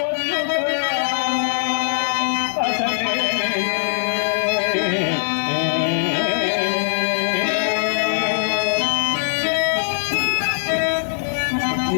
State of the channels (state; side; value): silent; right; 65 dB below the other